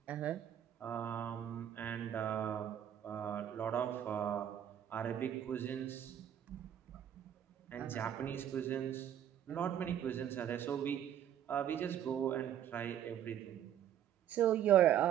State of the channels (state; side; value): quieter; left; 10.3 dB